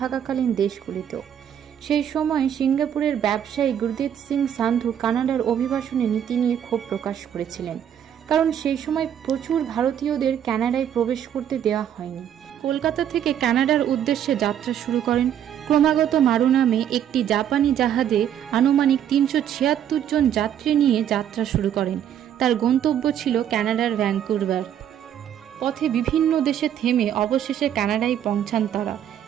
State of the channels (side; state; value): left; quieter; 9.8 dB